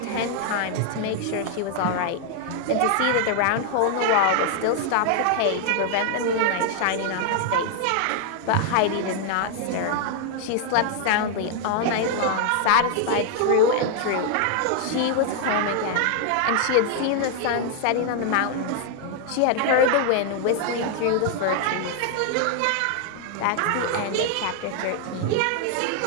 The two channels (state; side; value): different; both; correlation 0.00